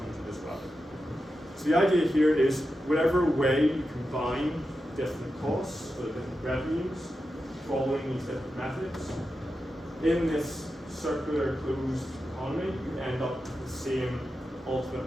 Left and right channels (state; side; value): normal; both; correlation 0.90